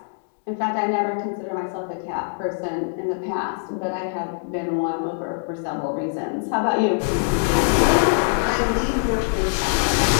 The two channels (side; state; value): right; silent; digital silence